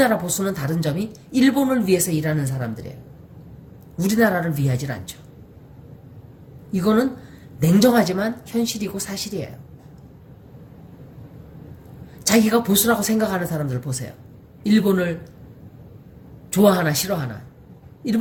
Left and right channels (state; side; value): identical; both; correlation 1.00